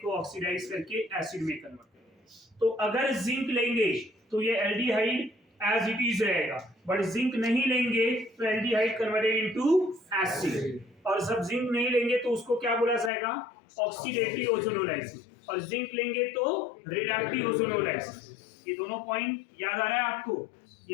को ऑक्सीडाइज करके एसिड में कन्वर्ट करेगा। तो अगर जिंक लेंगे तो ये एल्डिहाइड एज इट इज रहेगा, बट जिंक नहीं लेंगे तो एल्डिहाइड कन्वर्टेड इनटू एसिड, और जब जिंक नहीं लेंगे तो उसको क्या बोला जाएगा? ऑक्सीडेटिव ओजोनोलाइसिस, और जिंक लेंगे तो रिडक्टिव ओजोनोलाइसिस। ये दोनों पॉइंट याद आ रहा है आपको?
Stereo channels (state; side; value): drops out; right; at 13.1 s